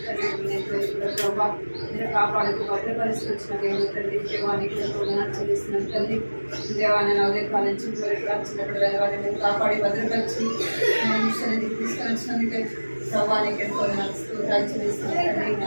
తల్లి ప్రభా నేను కాపాడుతూ భద్రపరిస్థితి వచ్చిన దేవుడు తల్లి దేవానికి ఎంతో చేసిన తల్లి దేవాన్ని నా ఉదయకాల నుంచి వచ్చినప్పుడు దేవాన్ని నేను కాపాడి భద్రపరిచి సన్నిధికి తీసుకొచ్చినందుకే ప్రభానికి ఎంతో స్తోత్రాలు చెల్లిస్తున్నాను.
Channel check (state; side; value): inverted; both; correlation -1.00